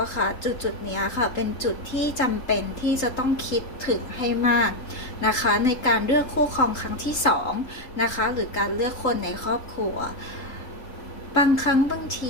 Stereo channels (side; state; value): right; late; 3.8 ms